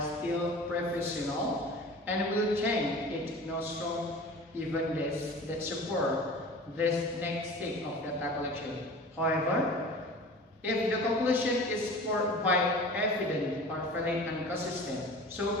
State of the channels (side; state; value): both; normal; correlation 0.39